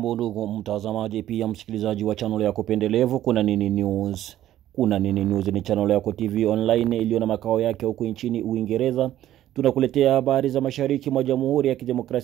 ndugu mtazamaji pia msikilizaji wa channel yako pendelevu Kuna Nini News. Kuna Nini News ni channel yako TV online iliyo na makao yake huko nchini Uingereza. Tunakuletea habari za mashariki mwa Jamhuri ya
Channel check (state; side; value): quieter; left; 12.8 dB